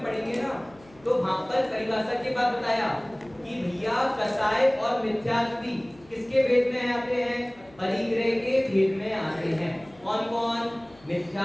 पढ़ेंगे ना, तो वहां पर परिभाषा के बाद बताया कि भैया कसाय और मिथ्यात्वी किसके भेद में आते हैं? परिग्रह के भेद में आते हैं। कौन कौन?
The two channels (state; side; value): noise; left; hum, 26 dB below the sound